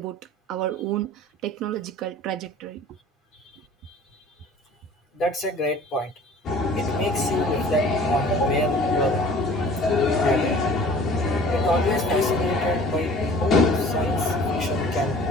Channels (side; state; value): both; normal; correlation 0.48